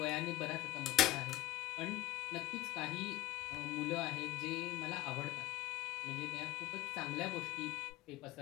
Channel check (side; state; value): right; quieter; 16.1 dB